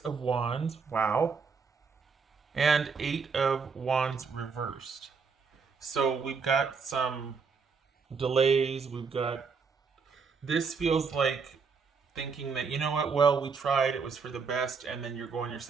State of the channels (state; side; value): quieter; left; 5.4 dB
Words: Wands. Wow. And 8 of Wands reversed. So we've got some delays. This feels like thinking that, you know what, well, we tried, it was for the best, and then you're going your